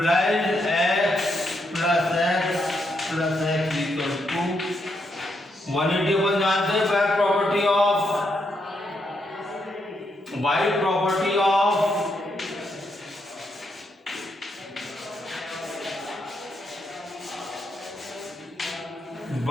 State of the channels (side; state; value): both; normal; correlation 0.79